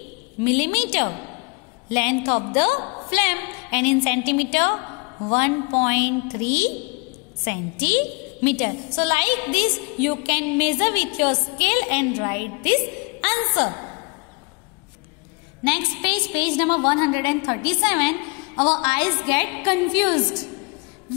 millimeter length of the flame, and in centimeter 1.3 centimeter. So like this you can measure with your scale and write this answer. Next page, page number 137. Our eyes get confused.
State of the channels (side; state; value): right; quieter; 31.0 dB